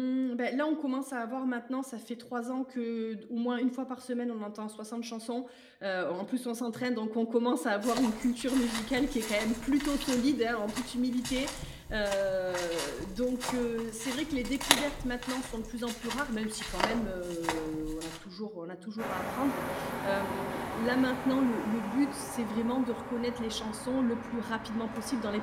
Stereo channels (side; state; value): both; identical; correlation 1.00